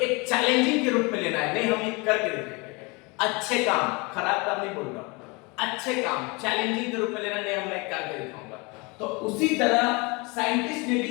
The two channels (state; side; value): quieter; right; 27.9 dB